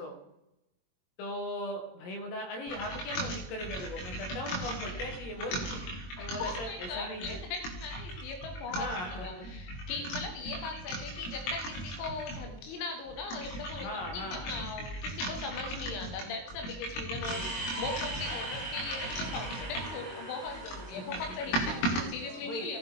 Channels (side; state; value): right; late; 22 ms